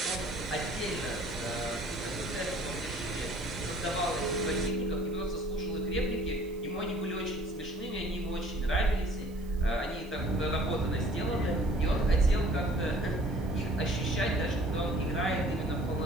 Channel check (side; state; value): right; noise; hiss, 25 dB below the sound